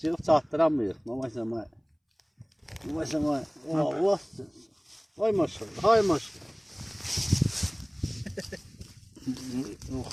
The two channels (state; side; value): identical; both; correlation 1.00